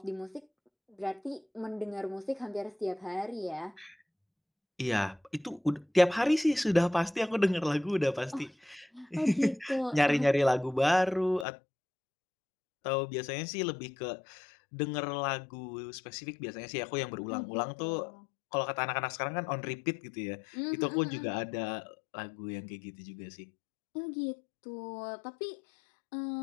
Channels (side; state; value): right; drops out; at 11.5 s